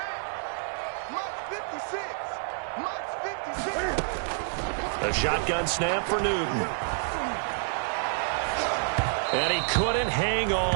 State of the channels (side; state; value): left; silent; 59 dB below the other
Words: Mike's 56. A shotgun snap for Newton. And he couldn't hang